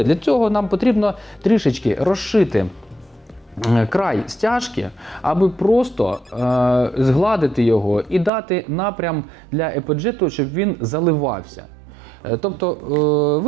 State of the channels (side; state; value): left; drops out; at 8.3 s